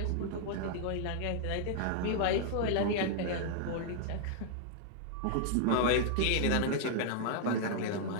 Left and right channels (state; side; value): different; both; correlation -0.01